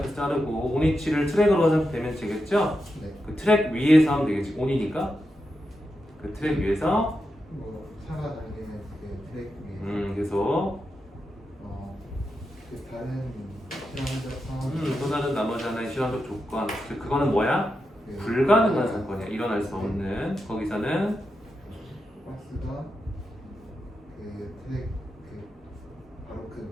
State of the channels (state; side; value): normal; both; correlation 0.87